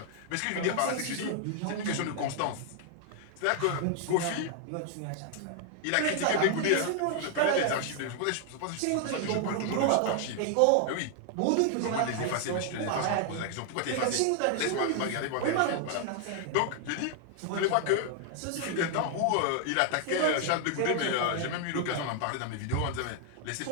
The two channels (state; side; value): different; both; correlation 0.00